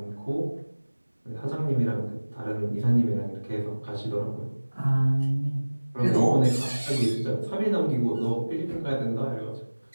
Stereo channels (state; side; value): inverted; both; correlation -1.00